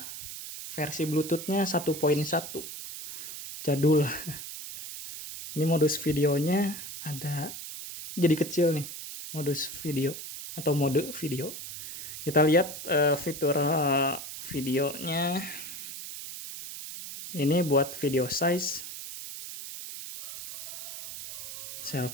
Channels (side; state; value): right; noise; hiss, 9 dB below the sound